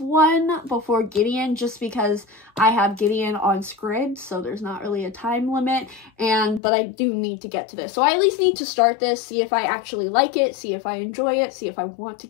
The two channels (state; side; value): drops out; right; at 6.6 s